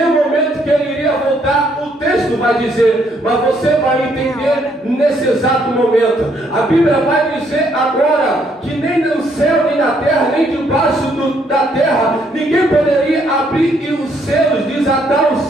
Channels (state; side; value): normal; both; correlation 0.70